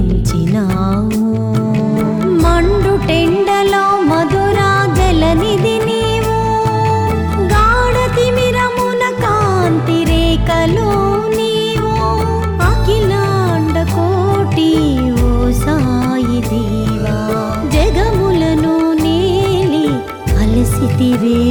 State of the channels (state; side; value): identical; both; correlation 1.00